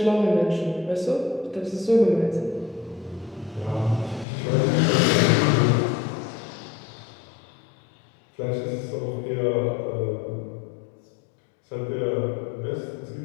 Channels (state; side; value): drops out; right; at 4.2 s